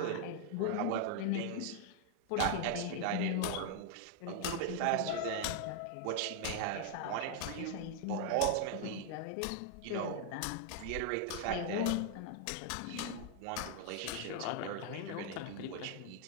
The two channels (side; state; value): both; different; correlation 0.00